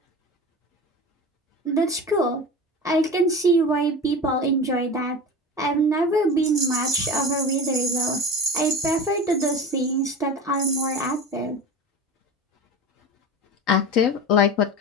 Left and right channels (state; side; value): normal; both; correlation 0.31